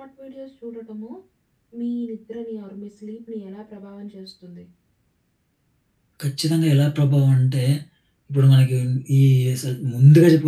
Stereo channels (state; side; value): identical; both; correlation 1.00